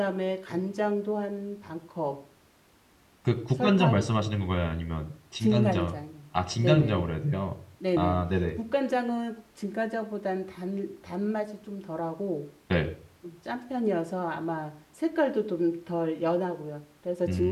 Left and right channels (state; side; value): identical; both; correlation 1.00